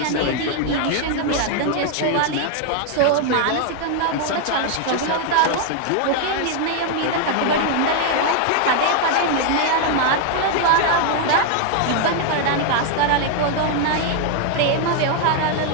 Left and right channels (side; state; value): both; different; correlation 0.00